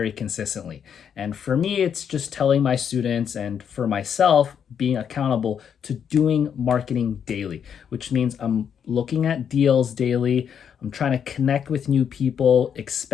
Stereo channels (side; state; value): right; quieter; 8.0 dB